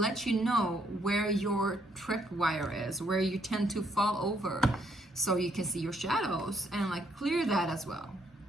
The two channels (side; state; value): both; normal; correlation 0.71